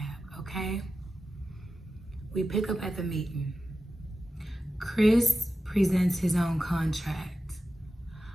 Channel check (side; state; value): both; normal; correlation 0.92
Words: okay? We pick up at the meeting. Chris presents his own contract.